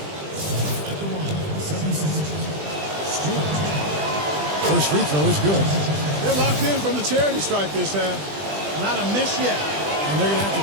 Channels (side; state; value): left; late; 20 ms